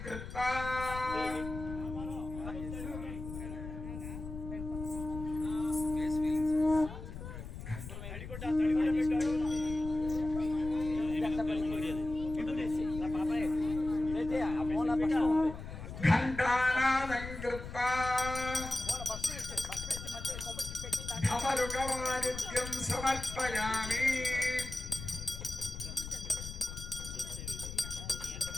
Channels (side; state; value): left; noise; rumble, 9 dB below the sound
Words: కృత్వా ఘంటానాదం కృత్వా ధమరుకవాదిత్యం సమర్పయామి.